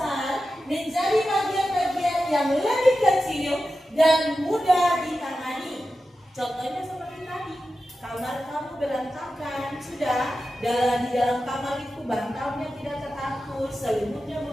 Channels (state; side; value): normal; both; correlation 0.92